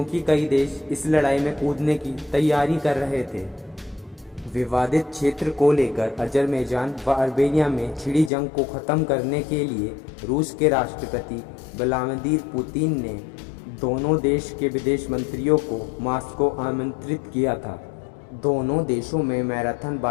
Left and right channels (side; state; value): right; drops out; at 8.3 s